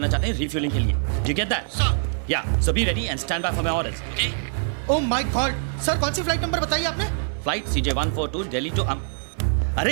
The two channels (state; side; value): silent; left; digital silence